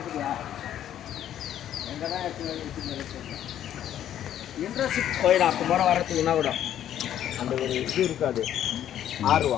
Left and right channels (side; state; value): right; quieter; 10.9 dB